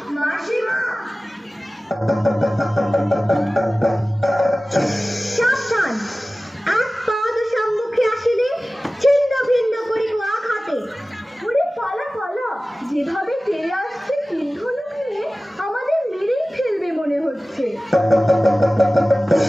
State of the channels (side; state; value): both; normal; correlation 0.97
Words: মাসিমা। সাবধান, এক পাদ সম্মুখে আসিলে ছিন্ন ভিন্ন করিব আঘাতে। ওরে পালা পালা, যেভাবে তেড়ে আসছে তিনধনু নিয়ে আমাদের মেরেই ফেলবে মনে হচ্ছে।